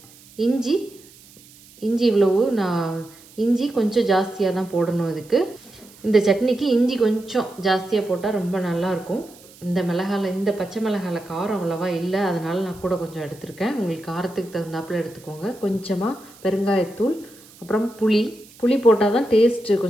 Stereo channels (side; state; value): right; noise; hiss, 24 dB below the sound